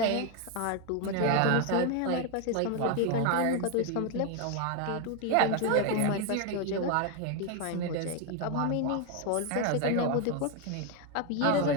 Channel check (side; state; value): both; different; correlation 0.01